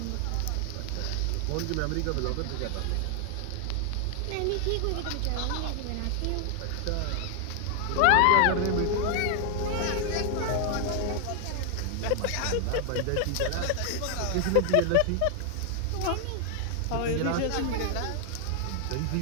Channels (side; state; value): both; different; correlation 0.00